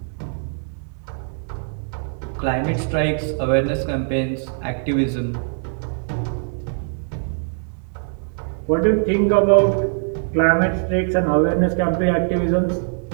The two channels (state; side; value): silent; left; digital silence